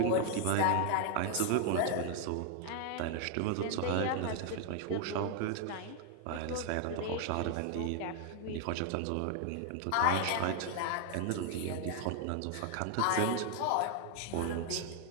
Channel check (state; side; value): different; both; correlation 0.00